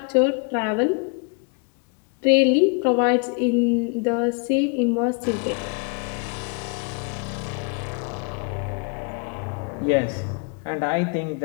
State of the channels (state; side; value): quieter; right; 34.3 dB